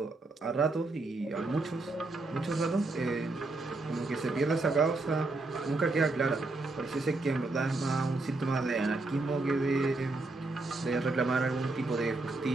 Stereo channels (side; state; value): left; quieter; 3.2 dB